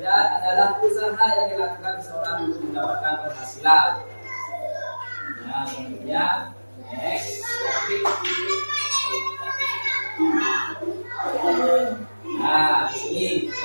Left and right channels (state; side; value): inverted; both; correlation -1.00